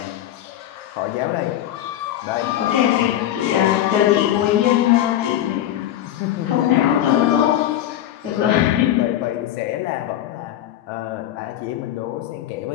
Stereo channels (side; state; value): right; quieter; 12.2 dB